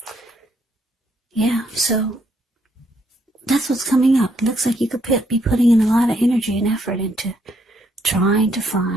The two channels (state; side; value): normal; both; correlation 0.72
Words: Yeah, so that's what's coming up. It looks like you could be putting in a lot of energy and effort into trying to